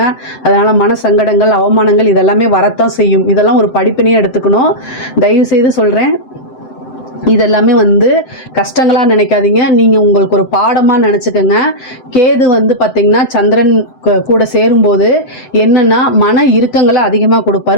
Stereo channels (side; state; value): right; late; 8.1 ms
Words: அதனால் மன சங்கடங்கள், அவமானங்கள் இதெல்லாமே வரத்தான் செய்யும். இதெல்லாம் ஒரு படிப்பினையே எடுத்துக்கணும். தயவுசெய்து சொல்கிறேன், இதெல்லாமே வந்து கஷ்டங்களாக நினைக்காதீங்க. நீங்கள் உங்களுக்கு ஒரு பாடமாக நினச்சிக்கோங்க. கேது வந்து பார்த்திங்கன்னா சந்திரன் கூட சேரும்போது என்னென்னா மன இறுக்கங்களை அதிகமாக